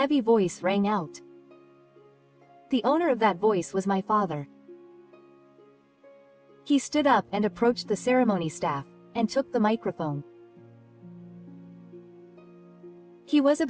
voice rang out. The owner of that voice was my father. He stood up and approached the ceremony staff, and took the microphone. He was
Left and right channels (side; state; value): both; identical; correlation 1.00